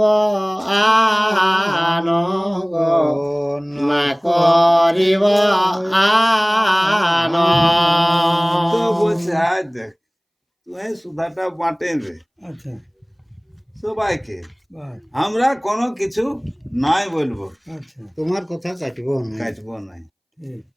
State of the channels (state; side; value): identical; both; correlation 1.00